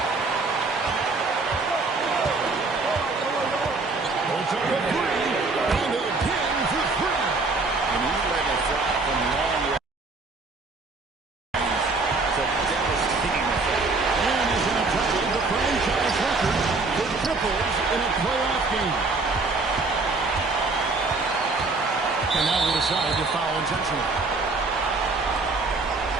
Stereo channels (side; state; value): left; quieter; 3.7 dB